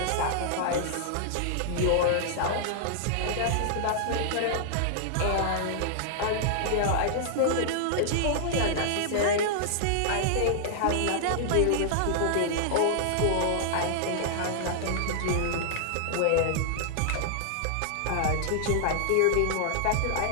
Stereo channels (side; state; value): both; different; correlation -0.01